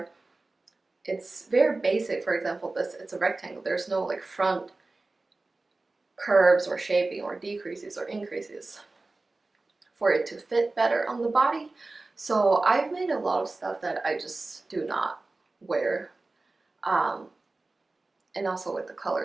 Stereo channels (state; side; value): quieter; left; 3.3 dB